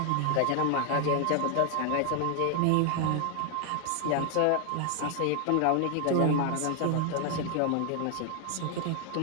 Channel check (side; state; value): both; different; correlation 0.00